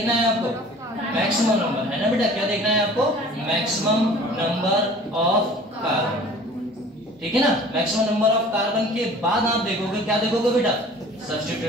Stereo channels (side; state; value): both; normal; correlation 0.47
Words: है आपको, मैक्सिमम नंबर, है ना बेटा, क्या देखना है आपको, मैक्सिमम नंबर ऑफ कार्बन, ठीक है ना। मैक्सिमम नंबर ऑफ कार्बन के बाद आप देखोगे, क्या देखोगे बेटा,